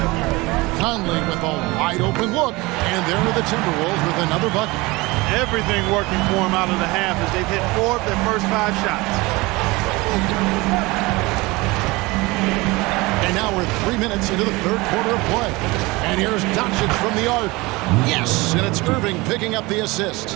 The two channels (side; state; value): left; quieter; 22.8 dB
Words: Conley with a wide open look. And there are the Timberwolves with another bucket. Everything working for them out of the half as they've hit 4 of their first 5 shots. And now we're 3 minutes into the third quarter of play. And here's Doncic from the arc. Yes, and it's Irving picking up the